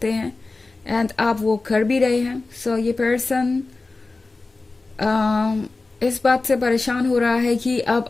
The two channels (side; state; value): right; quieter; 3.5 dB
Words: हैं एंड आप वो कर भी रहे हैं। ये पर्सन इस बात से परेशान हो रहा है कि अब